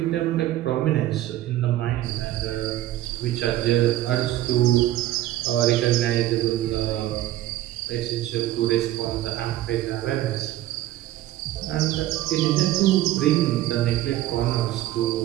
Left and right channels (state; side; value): quieter; left; 14.4 dB